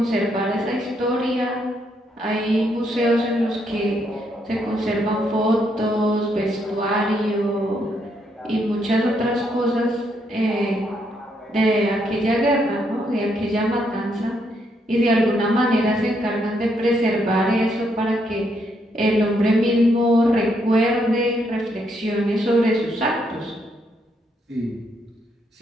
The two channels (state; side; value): normal; both; correlation 0.75